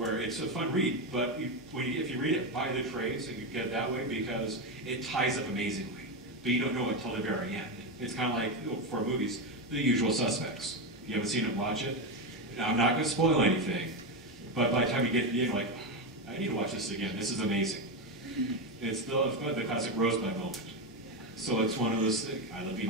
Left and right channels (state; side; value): normal; both; correlation 0.12